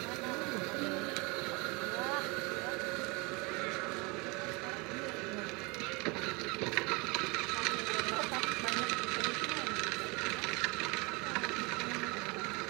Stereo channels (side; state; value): left; quieter; 27.4 dB